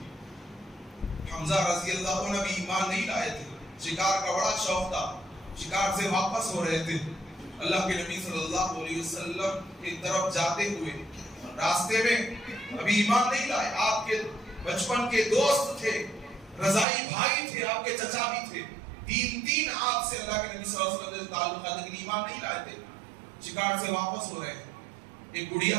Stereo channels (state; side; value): drops out; left; at 16.9 s